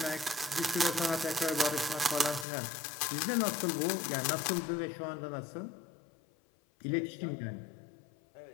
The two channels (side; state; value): right; drops out; at 2.5 s